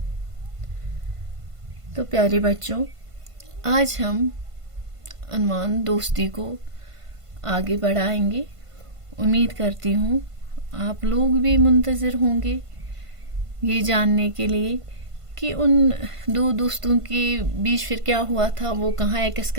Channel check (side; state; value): left; late; 1.5 ms